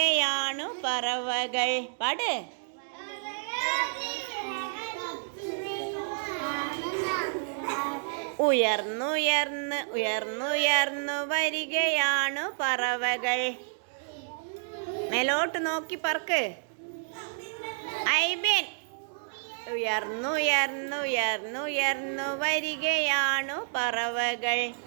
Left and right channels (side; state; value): left; silent; digital silence